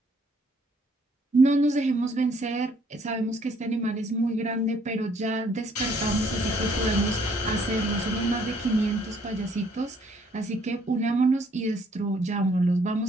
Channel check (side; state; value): both; normal; correlation 0.64